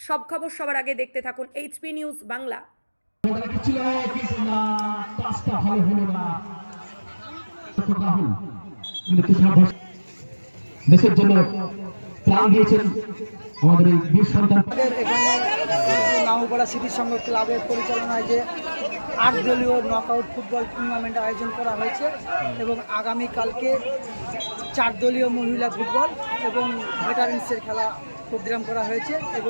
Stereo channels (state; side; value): inverted; both; correlation -1.00